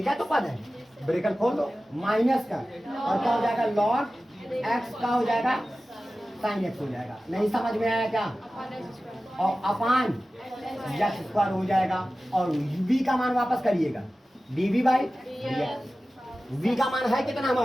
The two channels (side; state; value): both; normal; correlation 0.95